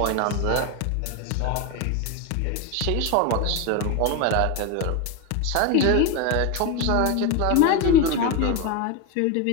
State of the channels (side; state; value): both; different; correlation 0.02